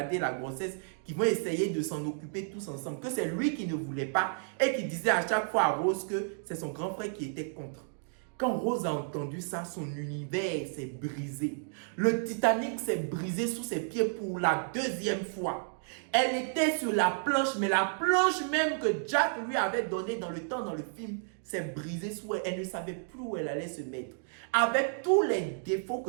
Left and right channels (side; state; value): left; silent; digital silence